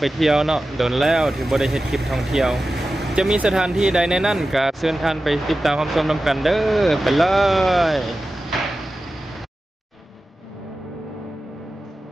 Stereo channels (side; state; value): both; normal; correlation 0.94